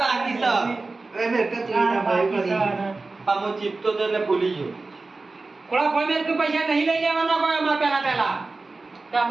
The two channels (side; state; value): left; quieter; 3.6 dB